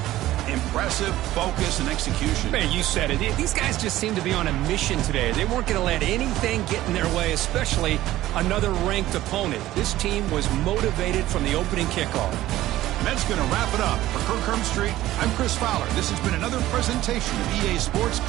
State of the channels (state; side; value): quieter; left; 15.2 dB